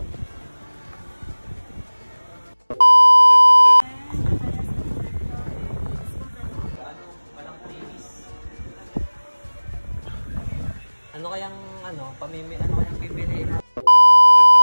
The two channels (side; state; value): both; inverted; correlation -1.00